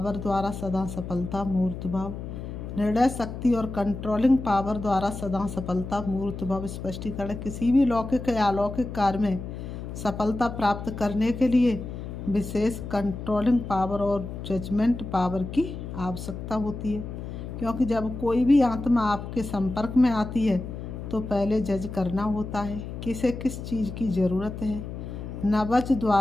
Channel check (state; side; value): noise; left; hum, 8 dB below the sound